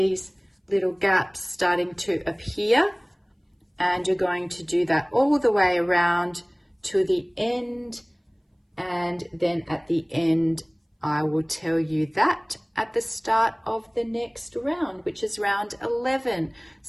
little gaps starting to appear, and you're going to do that all the way around to the end, and then at the end I will tell you that at the start of the next round, which is round 11.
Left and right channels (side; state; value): both; identical; correlation 1.00